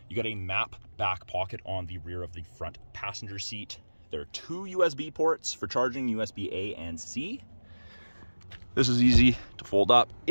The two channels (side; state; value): both; inverted; correlation -1.00